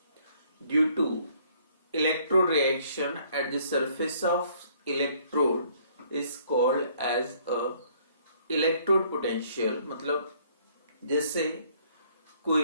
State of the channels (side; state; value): both; inverted; correlation -0.62